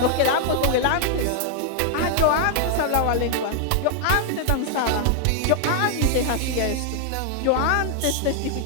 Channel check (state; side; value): different; both; correlation 0.00